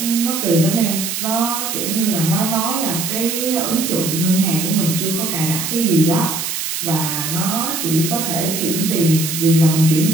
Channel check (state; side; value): noise; right; hiss, 3 dB below the sound